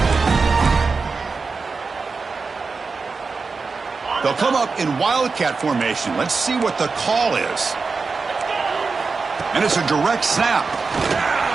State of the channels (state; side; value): quieter; left; 4.5 dB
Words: They'll come up in Wildcat formation. Let's see what the call is. And it's a direct snap.